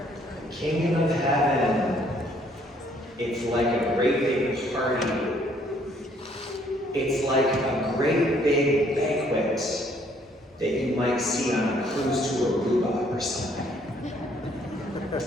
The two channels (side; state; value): both; normal; correlation 0.64